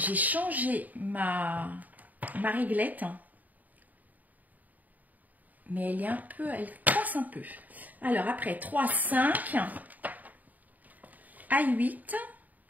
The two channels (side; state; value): left; late; 0.080 ms